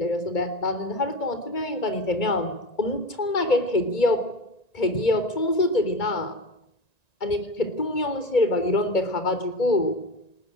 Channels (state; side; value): late; right; 1.9 ms